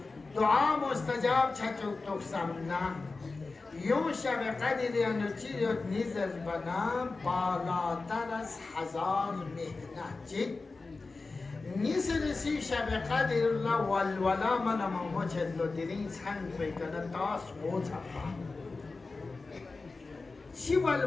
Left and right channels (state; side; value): quieter; right; 3.8 dB